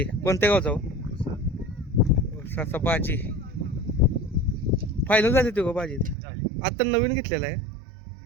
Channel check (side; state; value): left; drops out; at 6.2 s